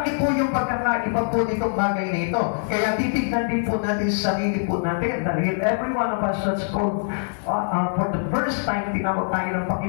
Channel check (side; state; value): right; silent; 63 dB below the other